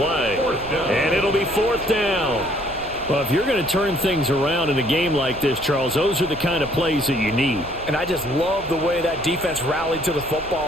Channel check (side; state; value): right; noise; rumble, 17 dB below the sound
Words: And it'll be fourth down. Well, if you're going to turn things around in a game like this, Charles, those are the kind of plays that you need. And I just love the way that defense rallied to the